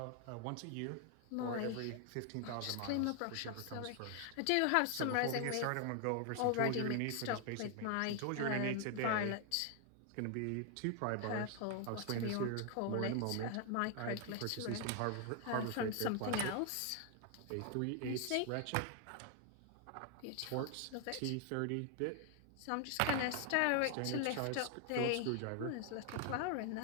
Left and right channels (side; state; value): both; different; correlation 0.00